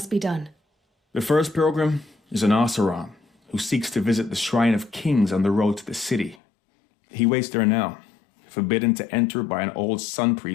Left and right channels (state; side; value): drops out; right; at 6.4 s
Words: be done? The first pilgrim is an Oseram who seeks to visit the Shrine of Kings on the road to the city. He waits there now, forbidden to enter by an old sun